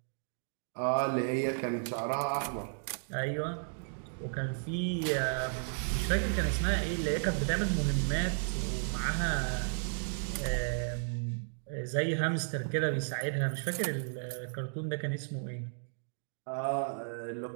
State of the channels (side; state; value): left; silent; digital silence